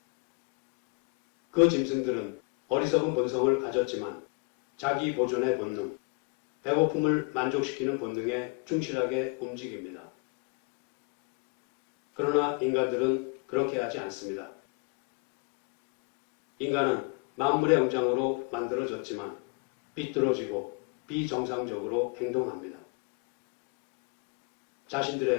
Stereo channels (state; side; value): quieter; right; 32.5 dB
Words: 그 짐승들은 어리석은 본성을 가졌지만 자기 보존의 본능, 배고픔을 만족시키는 본능에 충실하게 움직입니다. 그러나 인간들은 그렇게 하지 않습니다. 인간은 만물의 영장으로 만들어졌지만 비뚤어지고 비정상적으로 행동합니다.